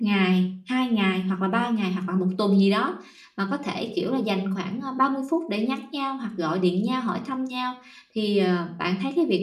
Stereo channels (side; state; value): both; identical; correlation 1.00